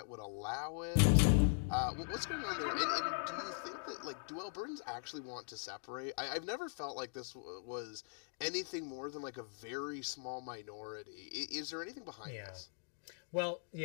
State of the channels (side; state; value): right; silent; digital silence